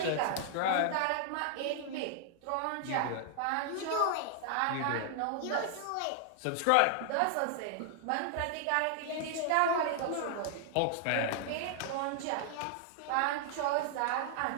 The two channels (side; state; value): both; different; correlation 0.00